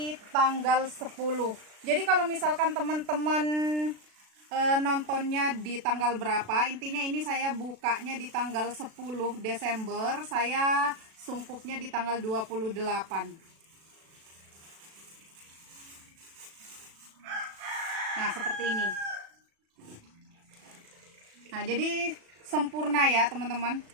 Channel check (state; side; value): late; left; 36 ms